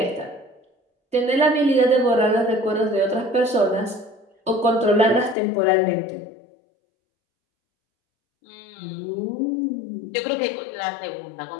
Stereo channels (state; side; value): drops out; right; at 5.4 s